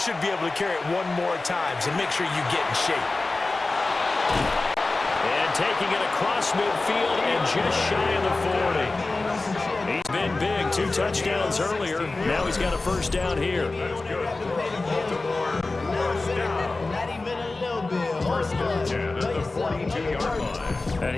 be able to carry it 1 more time, so make sure you get in shape. And taking it across midfield and just shy of the 40. He's been big, 2 touchdowns earlier. Now he's got a first down here. Baltimore, first down. First and 10 at the 42-yard line. And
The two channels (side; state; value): right; quieter; 3.3 dB